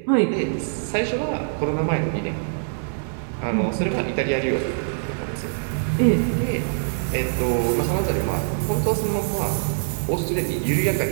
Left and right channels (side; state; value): left; silent; digital silence